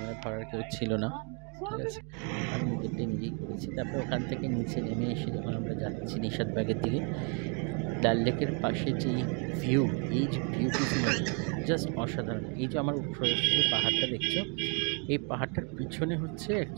ধরার কেউ ছিল না, ঠিক আছে, আমি নিজেরটাই নিজেই করেছি। তারপর ওখান থেকে নিচে নেমে এসে যখন আমরা যাচ্ছি নিশাদবাগের দিকে, ডাল লেকের পাশে যে ভিউ, এই যে ভিউটি জাস্ট অসাধারণ। এই যে আমার উপরে যে পাহাড়টা দেখছো, এই পাহাড়টার পিছনে হচ্ছে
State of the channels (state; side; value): quieter; left; 37.1 dB